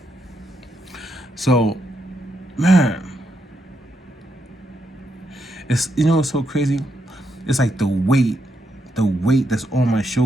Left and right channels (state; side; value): normal; both; correlation 0.80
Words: So, man, it's it's so crazy. It's like the weight that's on my